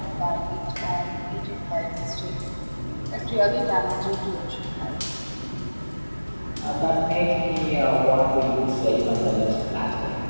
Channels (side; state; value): both; inverted; correlation -1.00